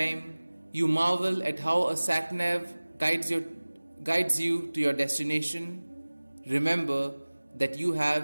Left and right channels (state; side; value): inverted; both; correlation -1.00